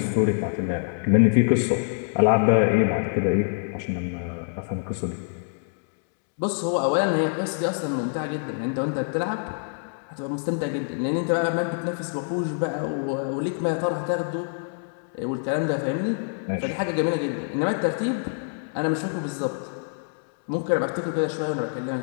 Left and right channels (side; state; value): right; silent; digital silence